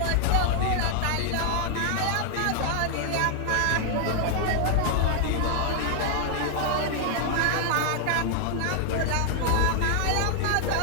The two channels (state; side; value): different; both; correlation 0.00